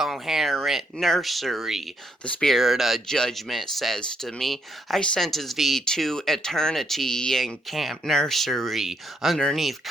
nursery. The spirit of judgment says to me, I sentence thee to eternity in camp nursery, underneath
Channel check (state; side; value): normal; both; correlation 0.75